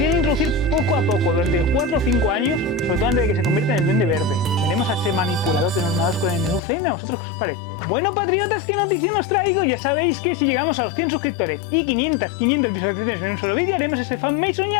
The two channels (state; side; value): drops out; right; at 6.6 s